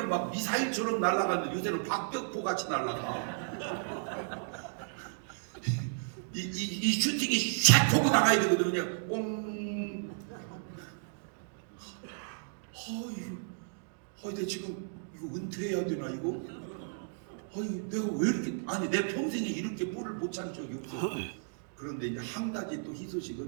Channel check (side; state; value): left; silent; digital silence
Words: 막 미사일처럼 날아갔는데 요새는 박격포 같이 날아가. 이 슈팅이 샥 보고 나가야 되거든요. 그냥 뽕. 내 지금 이거 은퇴해야 되나 이거? 내가 왜 이렇게 아니 내 평생에 이렇게 볼을 못 찬 적이 없어. 그런데 이제 한 가지 또